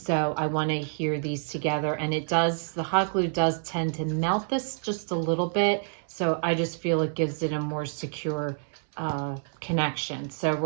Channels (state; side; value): silent; left; 59 dB below the other